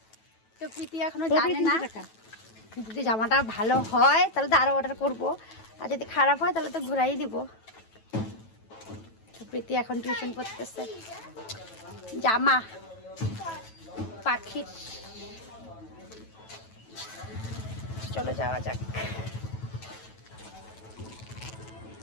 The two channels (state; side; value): late; right; 9.2 ms